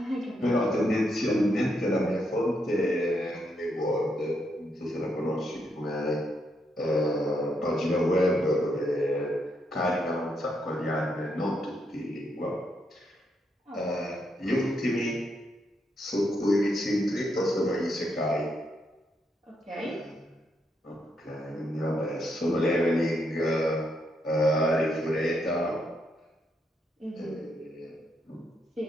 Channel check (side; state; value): both; normal; correlation 0.78